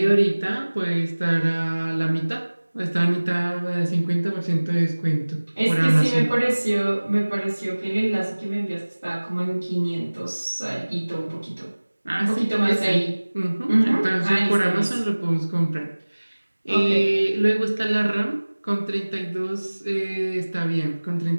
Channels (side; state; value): both; inverted; correlation -1.00